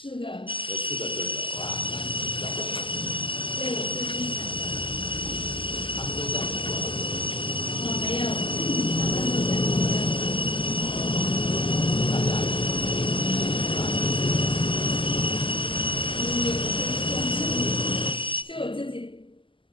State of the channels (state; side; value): late; right; 0.25 ms